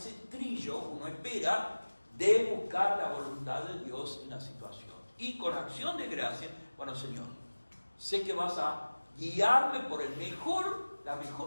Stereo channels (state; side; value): inverted; both; correlation -1.00